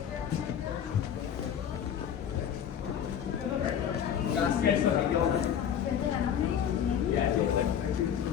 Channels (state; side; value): quieter; right; 8.9 dB